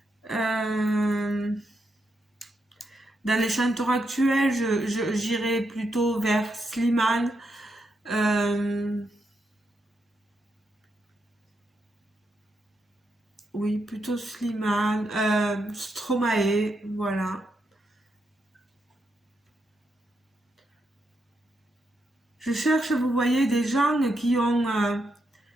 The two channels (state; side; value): normal; both; correlation 0.82